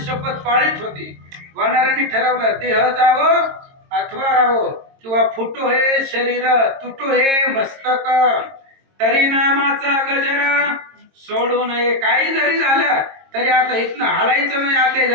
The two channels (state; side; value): late; left; 22 ms